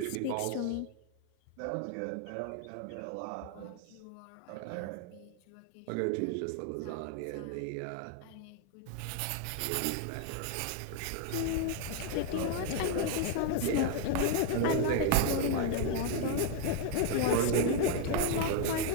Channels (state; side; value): different; both; correlation 0.00